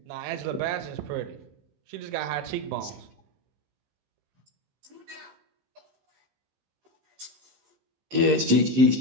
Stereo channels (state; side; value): late; left; 15 ms